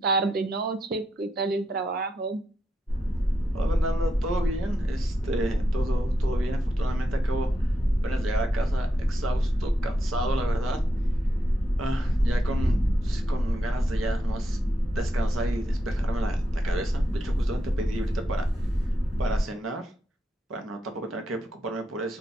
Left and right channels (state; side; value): normal; both; correlation 0.83